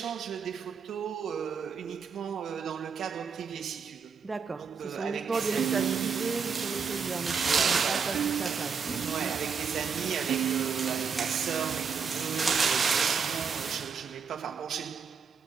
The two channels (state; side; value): quieter; left; 6.0 dB